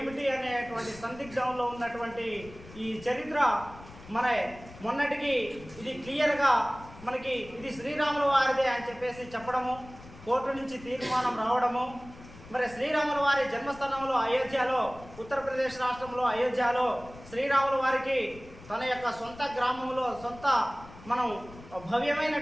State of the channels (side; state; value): left; noise; rumble, 18 dB below the sound